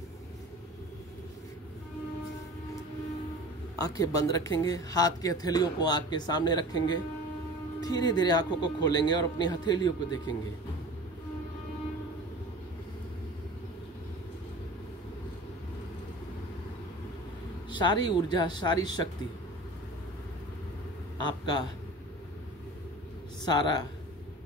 आंखें बंद रखेंगे, हाथ की हथेलियों को आंख के सामने रखेंगे, धीरे धीरे आंखों को खोलेंगे और अपनी हथेलियों को देखेंगे। सारी ऊर्जा, सारी शक्ति, आपका सारा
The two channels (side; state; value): both; normal; correlation 0.39